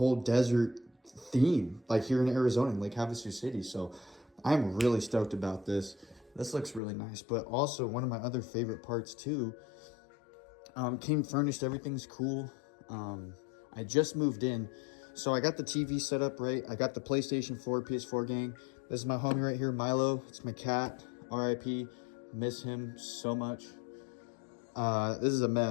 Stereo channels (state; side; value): drops out; right; at 6.8 s